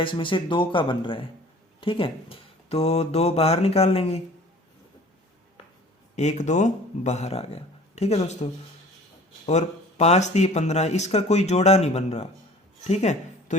से 2 का बन रहा है। ठीक है, तो 2 बाहर निकाल लेंगे, 1 2 बाहर आ गया। ठीक है दोस्तों, और 5 3 15, इसका कोई जोड़ा नहीं बन रहा। ठीक है, तो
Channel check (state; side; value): normal; both; correlation 0.47